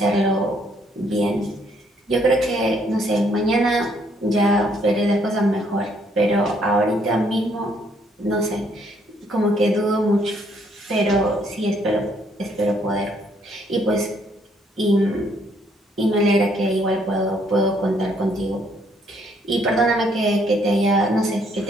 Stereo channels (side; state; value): both; normal; correlation 0.68